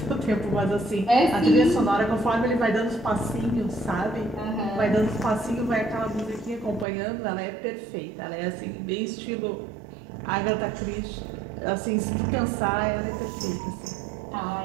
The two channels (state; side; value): drops out; left; at 6.9 s